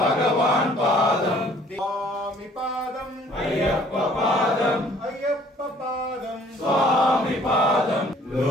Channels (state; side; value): normal; both; correlation 0.57